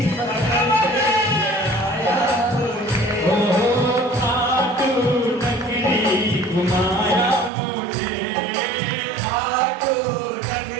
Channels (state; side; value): drops out; left; at 7.5 s